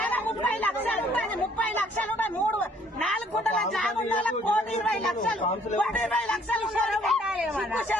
30 లక్షలు ఉంటుంది, 30 లక్షలు ఉంటాయి. 4 గుంటల జాగా ఉన్న వాళ్ళకి ₹1,20 లక్షలు, ₹1,20 లక్షలు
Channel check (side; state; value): both; normal; correlation 0.61